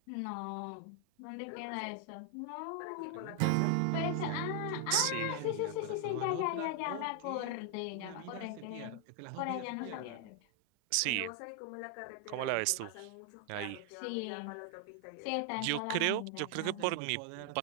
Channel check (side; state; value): both; different; correlation 0.00